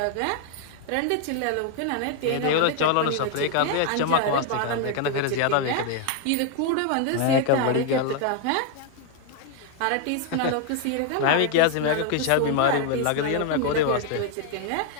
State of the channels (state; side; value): different; both; correlation 0.00